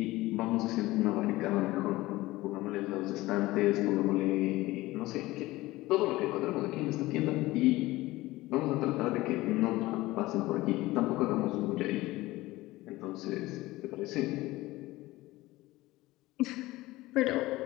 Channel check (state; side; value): quieter; right; 18.7 dB